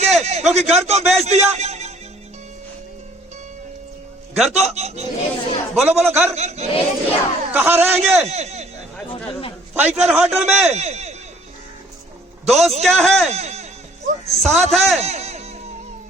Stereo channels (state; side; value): normal; both; correlation 0.58